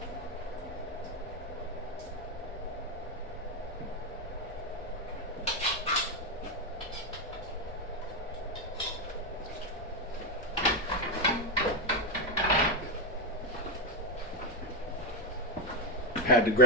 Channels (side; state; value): both; normal; correlation -0.01